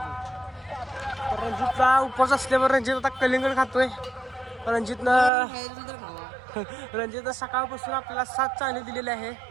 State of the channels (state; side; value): drops out; left; at 5.3 s